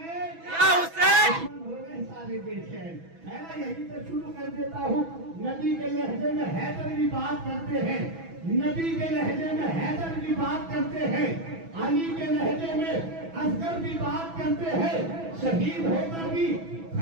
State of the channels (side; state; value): left; late; 6.1 ms